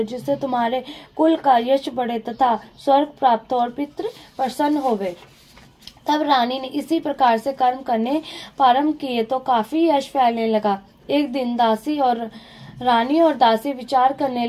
जिससे तुम्हारे कुल का यश बढ़े तथा स्वर्ग प्राप्त हो और पितृ प्रसन्न होवे। तब रानी ने इसी प्रकार से कर्म करने प्रारंभ किए तो काफी यश फैलने लगा। एक दिन रानी और दासी विचार करने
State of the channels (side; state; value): both; identical; correlation 1.00